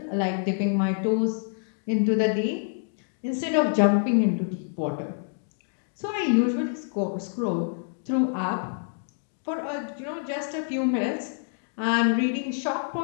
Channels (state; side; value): silent; right; digital silence